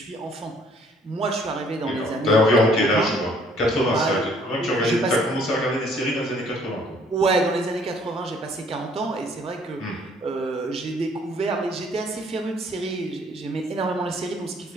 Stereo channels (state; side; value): normal; both; correlation 0.61